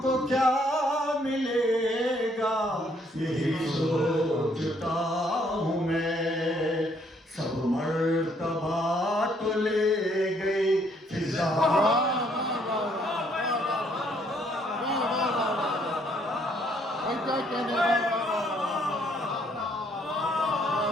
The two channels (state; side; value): normal; both; correlation 0.67